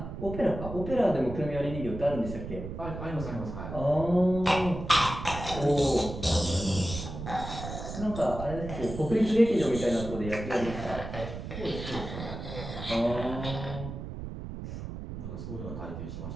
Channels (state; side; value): noise; right; rumble, 8 dB below the sound